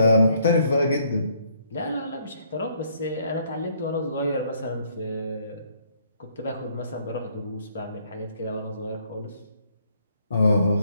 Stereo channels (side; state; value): both; inverted; correlation -0.67